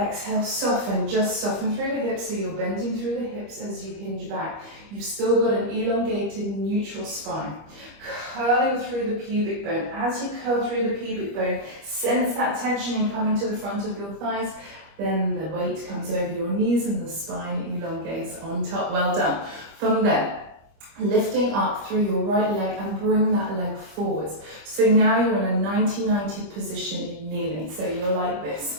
soften. Just soften through the hips, so you're bending through the hips as you hinge back. You've still got an elongated neutral spine. Curling through the pubic bone. As you curl through the pubic bone, sense that tension coming to the front of your thighs. Then the weight comes over your knees and the spine elongates on top. Well done. From there, lifting up through your right leg and bring that leg forwards. So now you're in a 90-90 position in kneeling. So you're like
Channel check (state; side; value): late; left; 25 ms